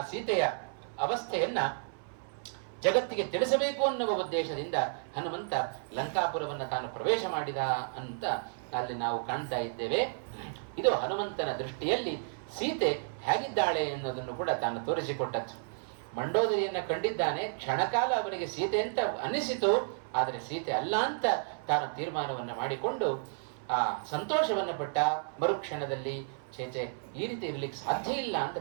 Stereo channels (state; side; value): silent; left; 56 dB below the other